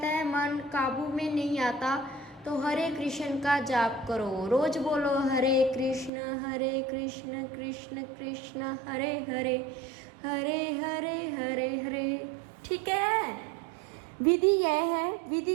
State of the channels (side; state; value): left; drops out; at 6.1 s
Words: है, मन काबू में नहीं आता, तो हरे कृष्ण का जाप करो, रोज बोलो हरे कृष्ण कृष्ण कृष्ण हरे हरे, हरे हरे हरे हरे। ठीक है, विधि यह है। विधि